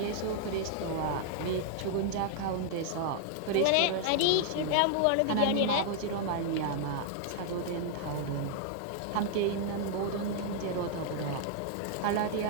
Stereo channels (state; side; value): different; both; correlation -0.01